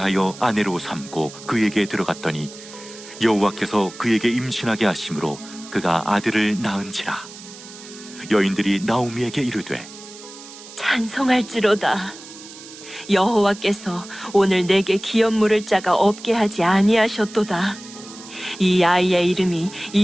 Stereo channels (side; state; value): right; noise; hiss, 16 dB below the sound